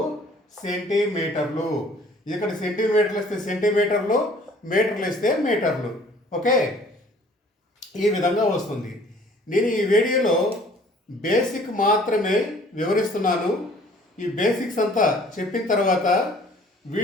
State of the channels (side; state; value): both; normal; correlation 0.54